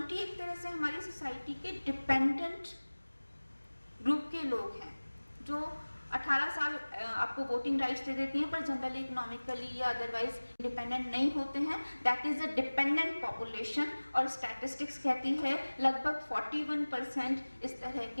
एक तरह से हमारी सोसाइटी के डिपेंडेंट ग्रुप के लोग हैं, जो 18 साल आपको वोटिंग राइट्स दे देती हैं पर जनरली इकोनॉमिकली या अदरवाइज इंडिपेंडेंट नहीं होते हैं। That is a dependent population, और स्टैटिस्टिक्स कहती है लगभग 41% इस तरह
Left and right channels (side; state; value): both; inverted; correlation -1.00